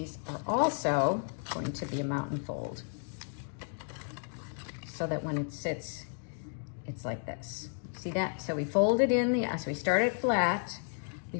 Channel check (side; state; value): right; silent; 56 dB below the other